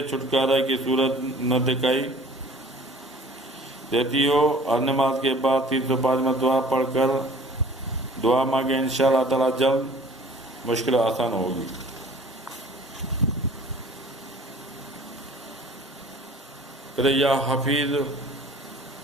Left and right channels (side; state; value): both; normal; correlation 0.49